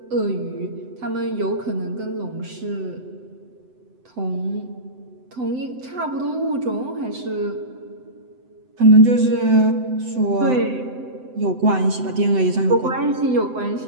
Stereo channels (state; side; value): late; left; 7.9 ms